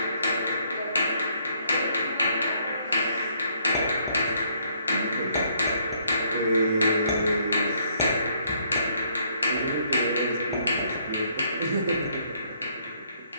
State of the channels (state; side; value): inverted; both; correlation -0.68